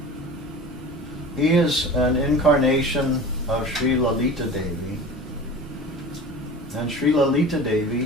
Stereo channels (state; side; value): normal; both; correlation 0.36